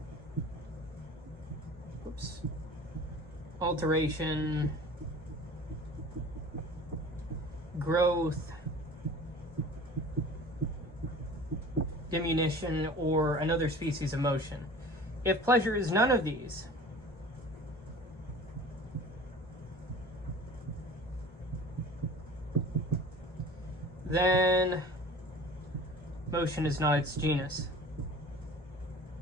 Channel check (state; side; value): normal; both; correlation 0.42